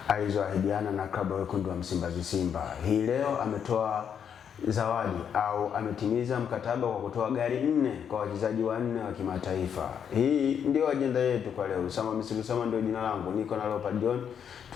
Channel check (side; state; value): right; quieter; 7.9 dB